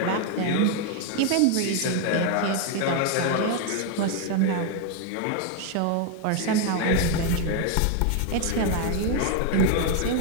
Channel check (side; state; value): both; different; correlation 0.01